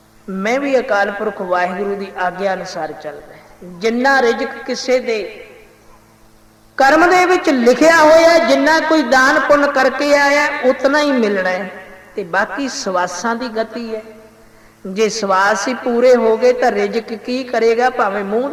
मैं भी अकाल पुरख वाहिगुरू की आग्या अनुसार चलदा, जिन्ना रिजक किसे दे कर्म दे विच लिखिया होया, जिन्ना कोई दान पुण्य करके आया उतना ही मिलना है, ते बाकी सवासां दी गति है। जे सवास ही पूरे हो गए तो रिजक की करेगा, भावें मूँह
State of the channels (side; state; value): both; identical; correlation 1.00